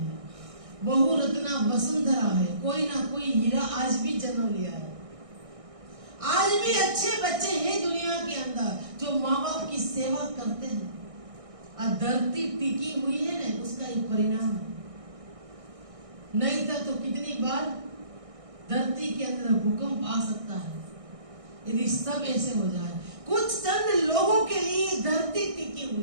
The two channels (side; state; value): left; late; 1.6 ms